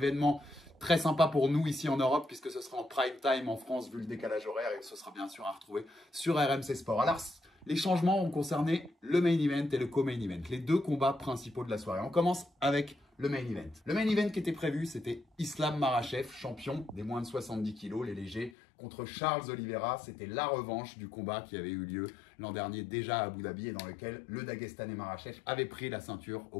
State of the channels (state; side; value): drops out; right; at 18.6 s